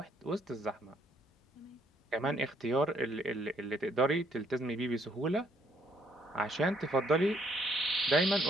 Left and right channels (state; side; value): normal; both; correlation 0.68